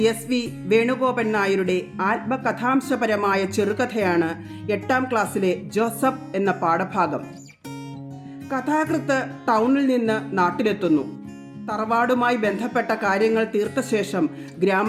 എസ്.വി. വേണുഗോപൻ നായരുടെ ആത്മകഥാംശപരമായ ചെറുകഥയാണ് 8ാം ക്ലാസ്സിലെ ജോസഫ് എന്ന പാഠഭാഗം. കഥാകൃത്ത് ടൗണിൽ നിന്ന് നാട്ടിലെത്തുന്നു. തറവാടുമായി ബന്ധപ്പെട്ട കാര്യങ്ങൾ തീർത്ത ശേഷം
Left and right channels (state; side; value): identical; both; correlation 1.00